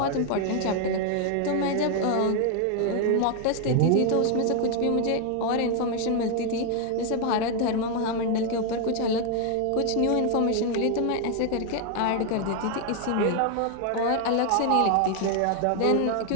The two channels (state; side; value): different; both; correlation 0.01